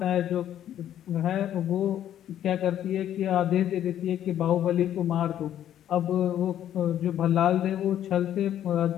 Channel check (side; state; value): right; quieter; 11.0 dB